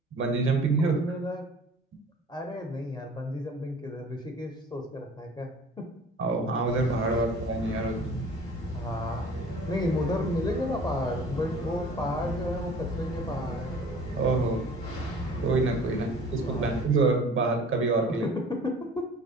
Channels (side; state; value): both; normal; correlation 0.47